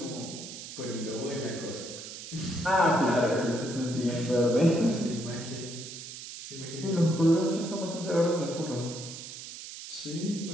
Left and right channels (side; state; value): right; noise; hiss, 11 dB below the sound